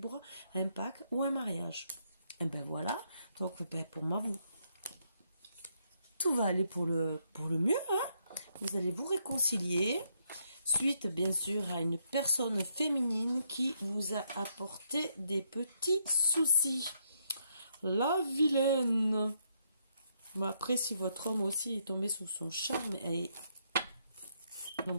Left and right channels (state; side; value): inverted; both; correlation -0.75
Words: un pacte ou un mariage. Et voilà, donc pour moi, tout va aller pour le mieux. Vous allez vous réconcilier, suite bien sûr à une personne féminine qui vous a apporté des petits soucis. La vilaine. Après, si votre homme aussi est tombé sous son charme, elle est